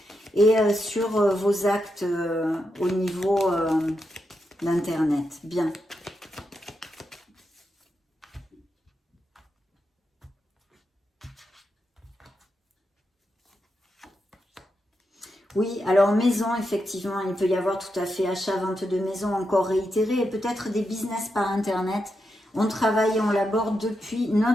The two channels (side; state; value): both; normal; correlation 0.85